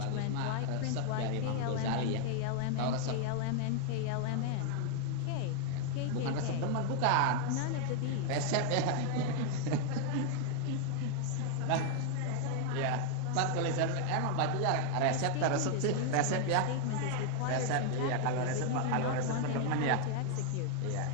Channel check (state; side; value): different; both; correlation 0.00